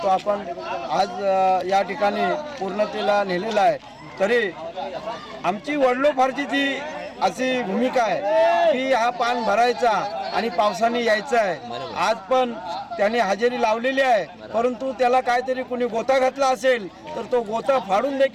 तो आपण आज या ठिकाणी पूर्णतेला नेलेला आहे. तरी आमची वडिलोपार्जित ती अशी भूमिका आहे की हा पान भरायचा आणि पावसाने यायचं आहे. आज पण त्याने हजेरी लावलेली आहे, परंतु त्याला काहीतरी कुणी गोता घातला असेल तर तो गोता फाडून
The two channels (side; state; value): both; identical; correlation 1.00